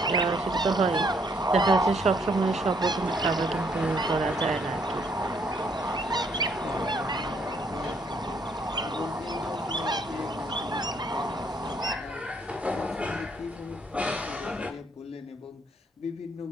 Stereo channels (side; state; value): both; normal; correlation 0.68